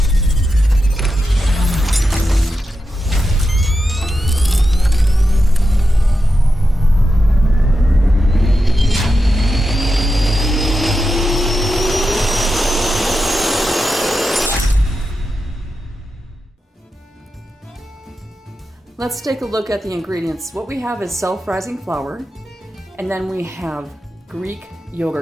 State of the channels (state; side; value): normal; both; correlation 0.89